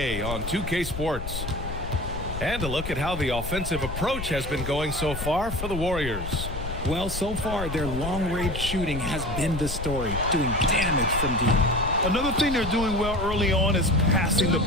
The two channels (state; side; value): noise; left; rumble, 7 dB below the sound